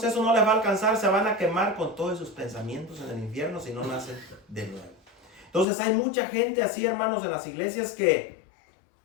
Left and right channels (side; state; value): right; drops out; at 5.7 s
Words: eso no les va a alcanzar. Se van a quemar con todos sus pensamientos en el infierno si no nacen de nuevo. Entonces hay mucha gente así, hermanos, en las iglesias que